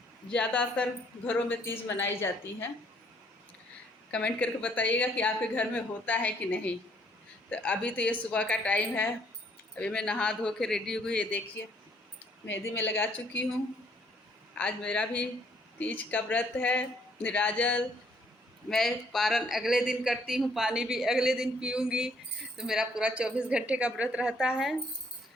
ज़्यादातर घरों में तीज मनाई जाती है। कमेंट करके बताइएगा कि आपके घर में होता है कि नहीं। तो अभी तो ये सुबह का टाइम है। अभी मैं नहा धो के रेडी हो गई। ये देखिए, मेहंदी में लगा चुकी हूँ। आज मेरा भी तीज का व्रत है, निराजल। मैं पारण अगले दिन करती हूँ, पानी भी अगले दिन पीऊँगी। तो मेरा पूरा 24 घंटे का व्रत रहता है।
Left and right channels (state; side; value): normal; both; correlation 0.66